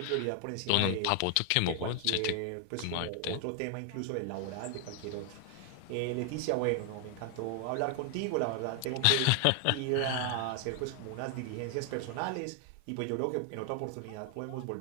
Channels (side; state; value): both; different; correlation 0.00